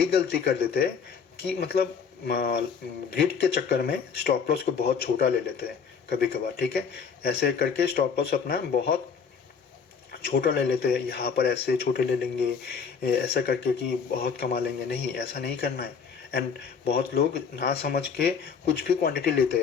गलती कर देते हैं कि मतलब ग्रिड के चक्कर में स्टॉप लॉस को बहुत छोटा ले लेते हैं कभी कभार, ठीक है। ऐसे करके स्टॉप लॉस अपना बहुत छोटा ले लेते हैं, यहाँ पर ऐसे छोटे ले लेंगे ऐसा करके कि बहुत कमा लेंगे। नहीं, ऐसा नहीं करना है। एंड बहुत लोग ना समझ के कुछ भी क्वांटिटी लेते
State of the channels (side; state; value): right; quieter; 6.2 dB